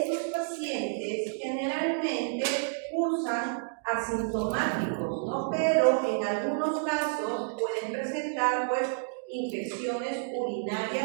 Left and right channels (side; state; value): left; silent; digital silence